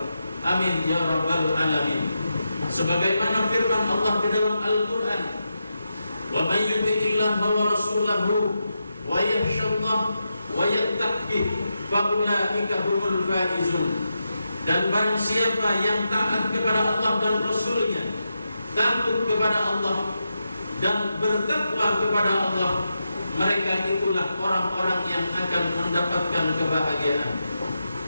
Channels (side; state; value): both; inverted; correlation -0.87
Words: Amin ya rabbal alamin. Sebagaimana firman Allah di dalam Al-Qur'an, "Wa may yuti'illaha wa rasulahu wa yakhshallah wa yattaqi fa ulaika humul faizun." Dan barang siapa yang taat kepada Allah dan Rasulnya, takut kepada Allah dan bertakwa kepada Allah, mereka itulah orang-orang yang akan mendapatkan kebahagiaan.